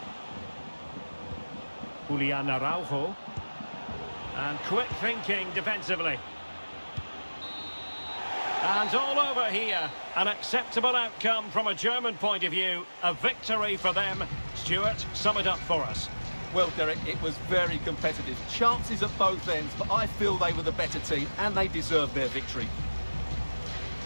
Julian Araujo. And quick thinking defensively. And all over here. An acceptable outcome from a German point of view. A victory for them. Stuart, sum it up for us. Well, Derek, it was very competitive. Chances at both ends, but I feel they were the better team and they deserved their victory.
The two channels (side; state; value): both; inverted; correlation -1.00